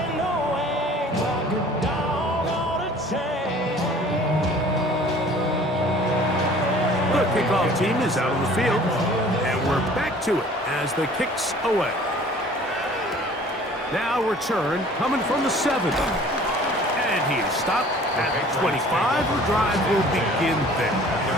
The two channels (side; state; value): both; normal; correlation 0.50